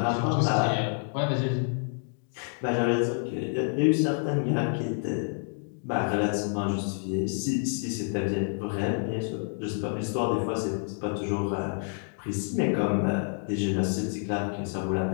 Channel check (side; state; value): right; silent; 56 dB below the other